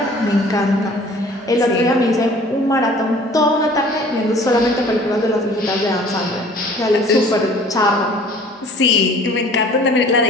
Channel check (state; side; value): normal; both; correlation 0.50